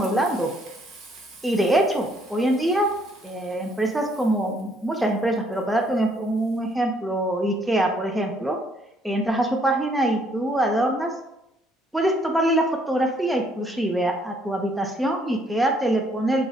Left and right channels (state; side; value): normal; both; correlation 0.67